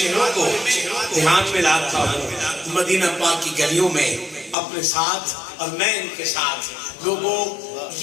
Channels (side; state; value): right; drops out; at 4.5 s